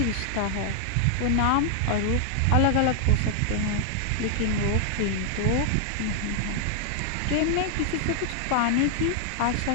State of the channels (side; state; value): both; different; correlation 0.00